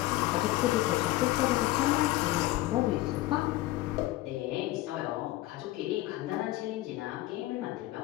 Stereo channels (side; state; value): right; quieter; 17.1 dB